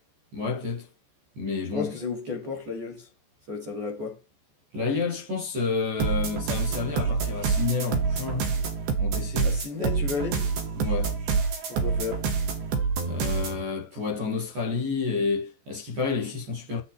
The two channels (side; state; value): left; late; 14 ms